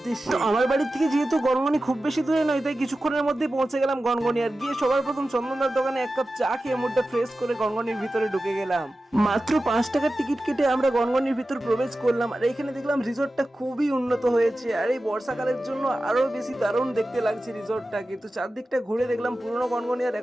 তো আমার বাড়ি থেকে যেহেতু গনগনি খুব বেশি দূরে নয়, তাই কিছুক্ষণের মধ্যে পৌঁছে গেলাম গনগনি। আর গিয়ে সবার প্রথম চন্দনদার দোকানে এক কাপ চা খেয়ে মুডটা ফ্রেশ করে গনগনির ভিতরে ঢুকে গেলাম। মাত্র 5 টাকার টিকিট কেটে আমরা গনগনির ভিতর প্রবেশ করলাম। আর এখানে দেখলাম রিসোর্টটা খুবই উন্নত হয়েছে, আর এই বর্ষাকালের জন্য আরো বেশি দারুণ দেখতে লাগছে রিসোর্টটা। কিন্তু চারদিকটা ঘুরে দেখলাম পুরনো গনগনি আর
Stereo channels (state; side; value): normal; both; correlation 0.94